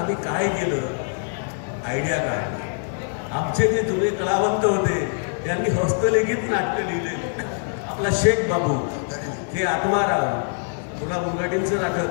काय केलं, आयडिया काय, आमचे जे जुने कलावंत होते त्यांनी हस्तलिखित नाटकं लिहिले. आपला शेख बाबू, हे आत्माराम, पुन्हा मुंगाटींचं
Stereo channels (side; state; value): right; silent; digital silence